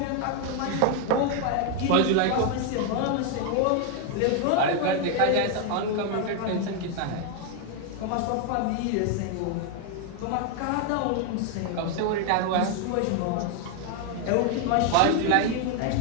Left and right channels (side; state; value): both; different; correlation 0.01